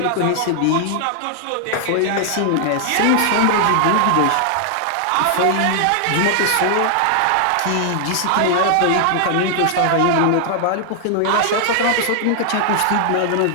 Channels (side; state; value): both; different; correlation 0.00